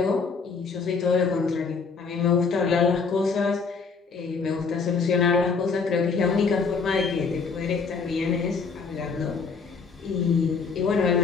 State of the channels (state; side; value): quieter; right; 5.1 dB